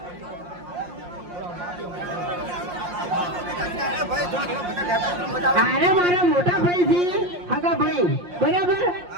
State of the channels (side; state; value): left; late; 5.6 ms